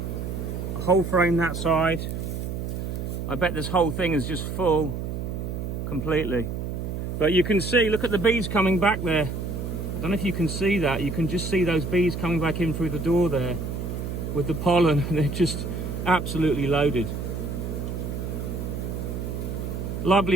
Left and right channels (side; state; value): right; noise; hum, 4 dB below the sound